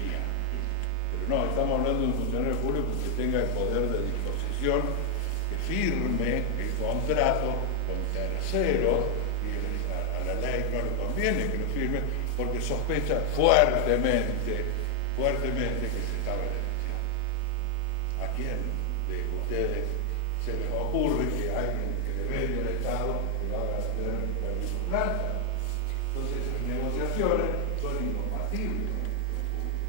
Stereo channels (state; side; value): different; both; correlation 0.00